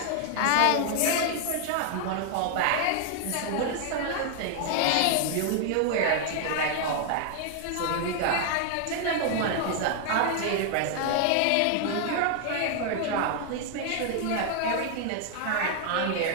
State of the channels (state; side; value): different; both; correlation 0.00